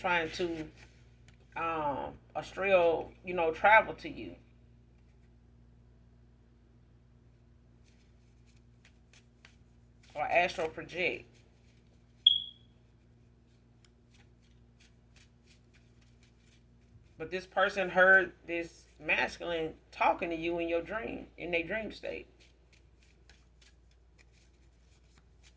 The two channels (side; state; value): both; identical; correlation 1.00